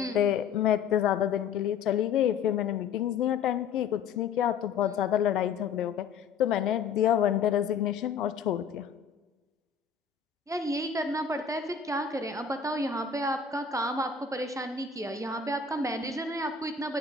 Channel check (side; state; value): right; quieter; 6.3 dB